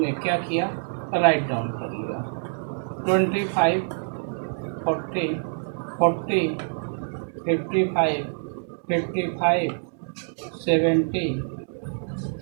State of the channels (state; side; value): silent; left; digital silence